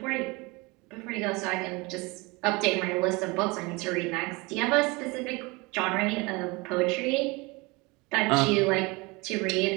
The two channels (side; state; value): left; quieter; 25.6 dB